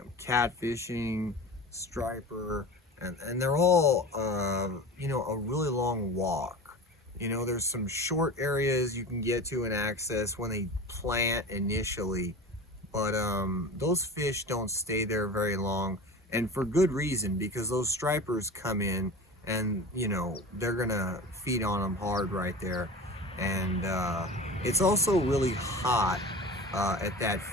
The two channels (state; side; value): normal; both; correlation 0.34